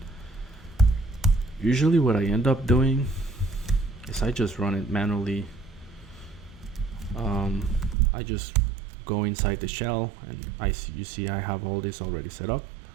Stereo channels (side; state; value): left; drops out; at 8.0 s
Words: Usually what I end up doing is I just run it manually. I just go inside the shell and you see I have all this already set up.